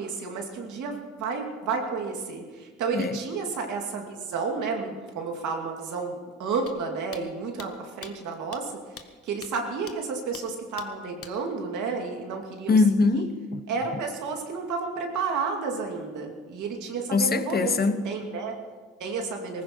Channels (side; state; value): both; normal; correlation 0.36